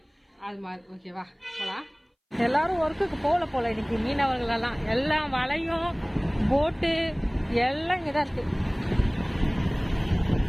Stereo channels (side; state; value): both; identical; correlation 1.00